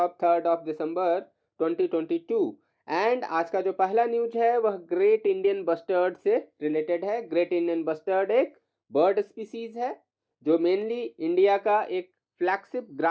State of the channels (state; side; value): identical; both; correlation 1.00